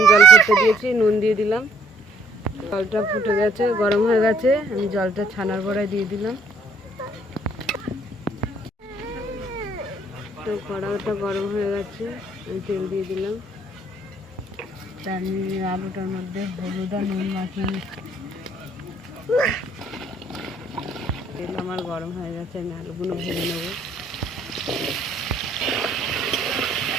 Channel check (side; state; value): both; normal; correlation 0.64